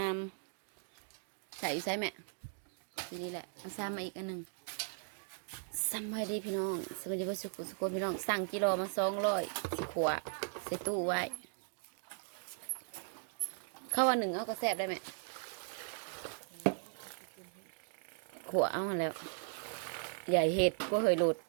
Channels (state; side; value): silent; left; digital silence